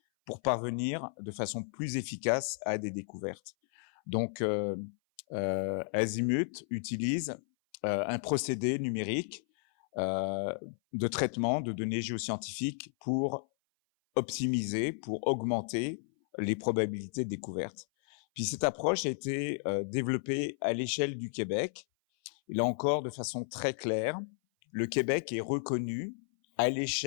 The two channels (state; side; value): silent; right; 56 dB below the other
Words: pour parvenir de façon plus efficace à des découvertes. Donc, Azimut utilise un procédé numérique de traitement de données géoscientifiques pour optimiser, pour augmenter les probabilités de découverte. Puis cette approche a été développée à l'échelle du Québec. Et là encore, de façon très claire, le Québec est reconnu à